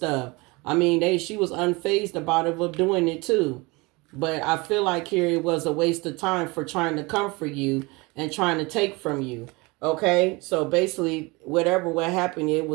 I mean, she was unfazed about it, of doing it too. But I feel like here it was a waste of time for trying to come for you and trying to take from you. Okay, so basically, what happened, it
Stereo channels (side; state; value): left; quieter; 25.4 dB